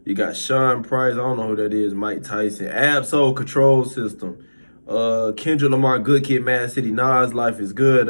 You got Sean Price. I don't know who that is. Mike Tyson. Absol Control System. Kendrick Lamar, Good Kid, Mad City. Nas, Life is Good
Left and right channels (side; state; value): both; inverted; correlation -1.00